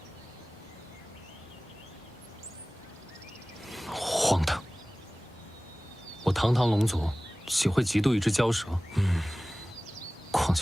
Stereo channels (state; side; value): normal; both; correlation 0.98